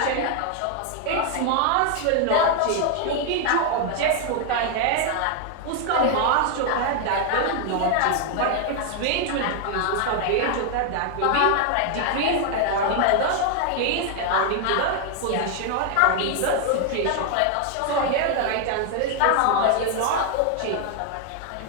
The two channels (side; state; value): both; different; correlation 0.00